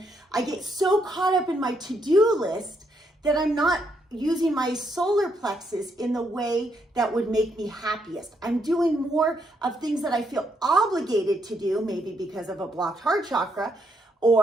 I get so caught up in my to-do list that I'm not using my solar plexus in the way that would make me happiest. I'm doing more of things that I feel obligated to do, maybe because of a blocked heart chakra,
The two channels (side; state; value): both; normal; correlation 0.76